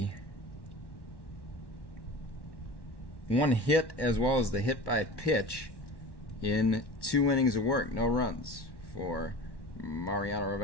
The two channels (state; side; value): late; right; 1.1 ms